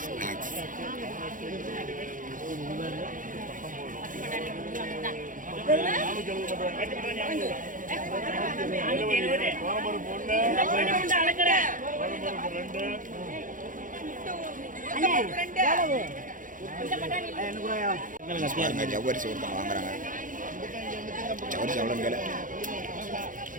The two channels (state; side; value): late; left; 0.39 ms